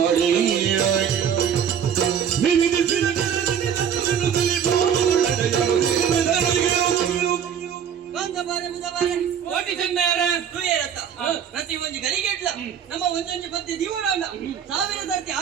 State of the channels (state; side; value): quieter; left; 8.2 dB